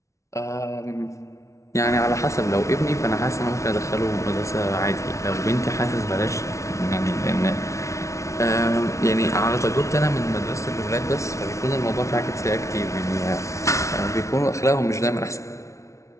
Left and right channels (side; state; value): right; late; 0.14 ms